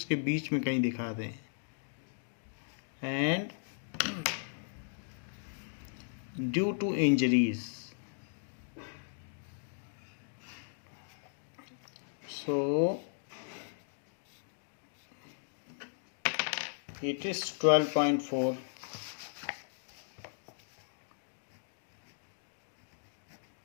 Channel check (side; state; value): right; silent; digital silence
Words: बीच में कहीं दिखा दें। And due to injuries, so it is 12.4.